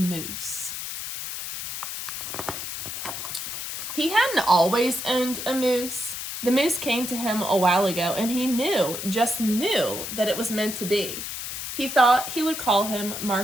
He hadn't always owned a moose. The moose came to him a while ago, and he just knew that it was meant to be. He thought he would call him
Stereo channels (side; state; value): left; noise; hiss, 6 dB below the sound